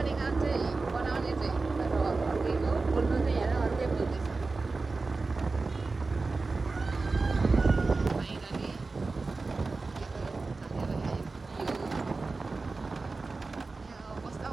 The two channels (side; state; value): left; quieter; 3.8 dB